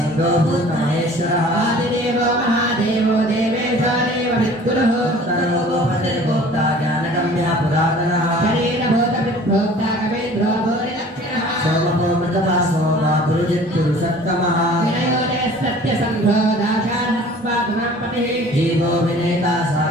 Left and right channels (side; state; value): both; normal; correlation 0.48